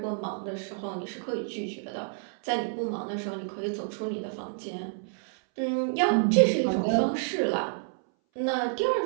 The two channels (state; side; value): silent; left; 59 dB below the other